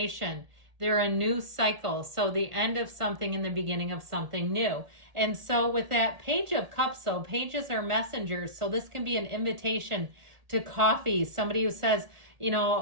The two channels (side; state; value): left; late; 1.7 ms